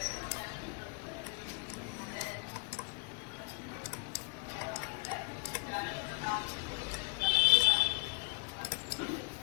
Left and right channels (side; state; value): right; quieter; 34.3 dB